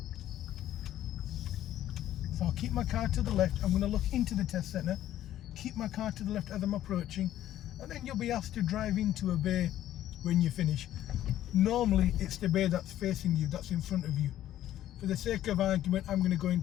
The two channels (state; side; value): quieter; right; 12.6 dB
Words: So I'll keep my car to the left. I'm going to look into the test centre, keep my car to the left as I'm approaching, and then you'll be asked to drive into a bay when you finish. Normally it's the bay that's facing you, that's in front of you. For the sake of argument, I'm going to go